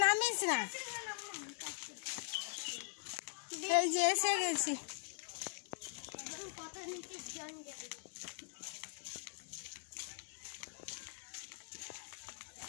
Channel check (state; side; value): silent; right; digital silence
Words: নামিস না। এই যে এসে গেছি।